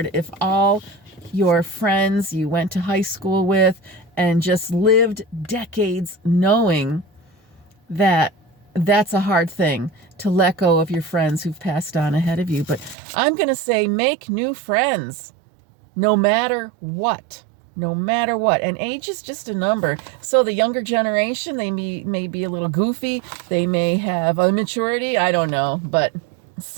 if all your friends you went to high school with and just lived decades knowing that that's a hard thing to let go of your friends who've passed on ahead of you. But I'm going to say, make new friends no matter what. No matter what. And age is just a number. So the younger generation, they may be a little goofy. They may have immaturity. I don't know. But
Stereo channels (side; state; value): left; drops out; at 13.0 s